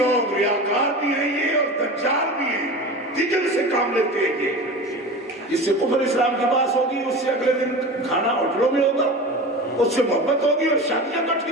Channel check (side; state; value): both; normal; correlation 0.31